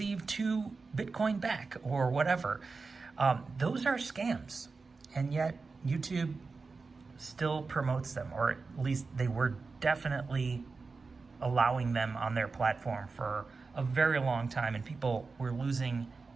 2 Bitcoin back or whatever. Those are scams. And yet YouTube still promotes them, or at least they were definitely allowing them on their platform for a very long time. And people were losing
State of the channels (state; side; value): quieter; left; 4.3 dB